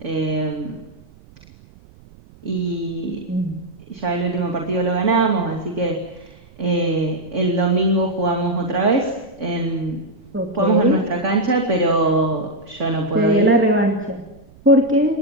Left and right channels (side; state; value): right; noise; rumble, 25 dB below the sound